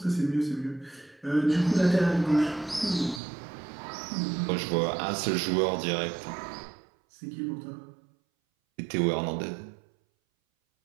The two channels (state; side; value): drops out; left; at 3.2 s